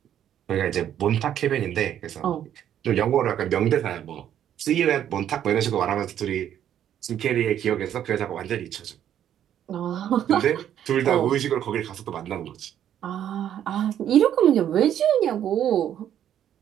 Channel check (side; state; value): left; quieter; 10.4 dB